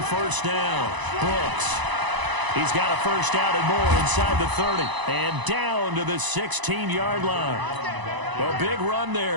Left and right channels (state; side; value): late; left; 1.0 ms